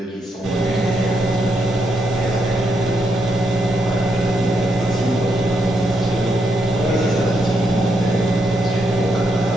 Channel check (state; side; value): normal; both; correlation 0.80